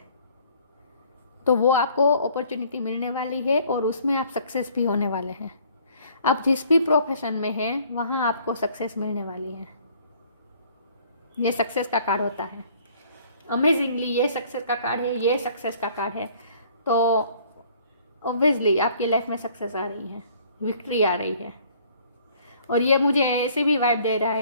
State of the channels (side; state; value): both; inverted; correlation -0.57